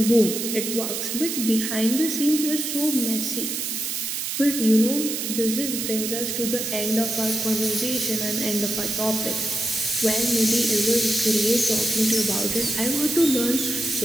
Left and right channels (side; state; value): right; noise; hiss, 3 dB below the sound